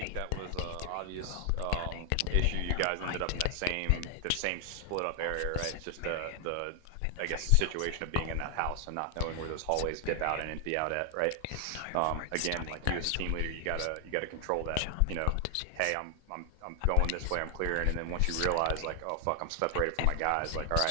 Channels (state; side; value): different; both; correlation 0.00